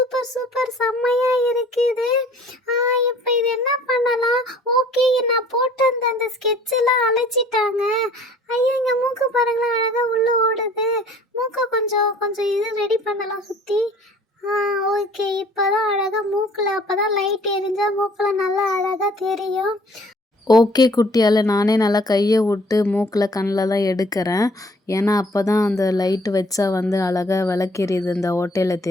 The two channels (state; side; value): normal; both; correlation 0.54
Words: சூப்பர், செம்மையா இருக்குது. இப்போ இது என்ன பண்ணலாம்? ஓகே, நான் போட்டு அந்த ஸ்கெட்ச் எல்லாம் அழைச்சிட்டாங்க. ஐயோ, இங்க மூக்கு பாருங்களேன், அழகா உள்ள ஓடுது. மூக்கை கொஞ்சம் கொஞ்சம் இது ரெடி பண்ணலாம் சுத்தி. ஓகே, இப்போதான் அழகாக மூக்கில், அப்போ தான் லைட் எரிஞ்சா மூக்கில் நல்லா அழகாக தெரியும். ஓகே குட்டியால், நானே நல்லா கையை விட்டு மூக்கில் கண்ணிலலாம் எடுக்கிறேன். ஏன்னா அப்போ தான் அந்த லைட்டு வச்சா வந்து அழகாக விளக்கெரியுது, இந்த ஓட்டையில்